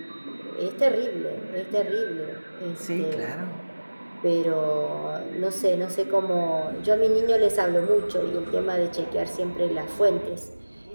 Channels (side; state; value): both; inverted; correlation -1.00